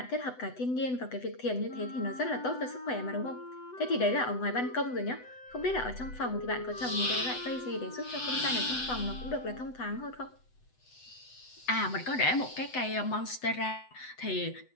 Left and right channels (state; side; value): late; right; 8.0 ms